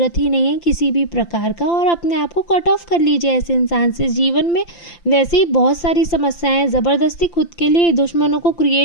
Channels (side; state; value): right; late; 5.8 ms